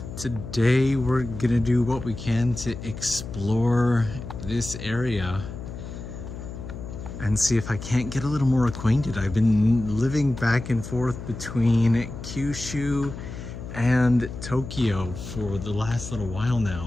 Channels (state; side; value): noise; left; hum, 10 dB below the sound